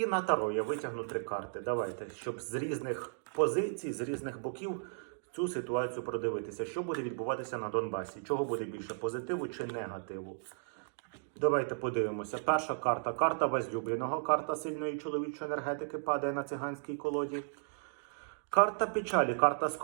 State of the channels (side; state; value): left; silent; digital silence